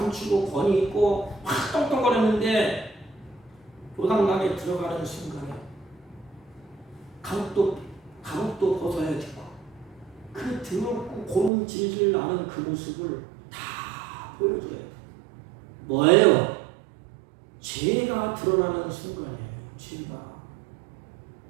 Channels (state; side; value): drops out; left; at 11.5 s